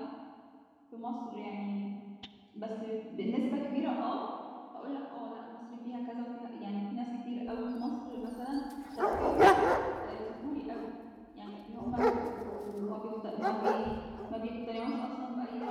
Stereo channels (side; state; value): both; identical; correlation 1.00